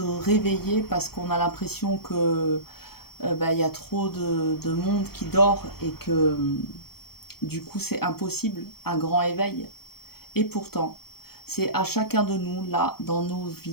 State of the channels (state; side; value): late; right; 0.95 ms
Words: réveiller parce qu'on a l'impression que y a trop de monde qui dort et que du coup c'est impossible un grand éveil. Et pourtant, c'est à chacun de nous, là, dans nos